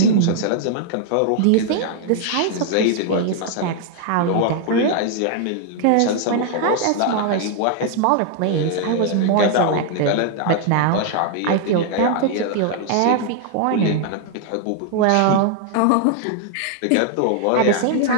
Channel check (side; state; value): both; different; correlation 0.00